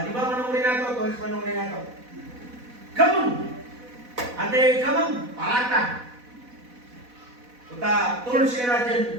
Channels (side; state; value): left; late; 4.1 ms